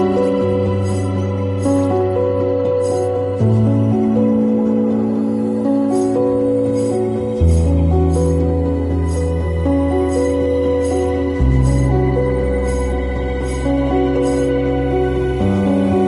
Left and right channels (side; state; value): both; identical; correlation 1.00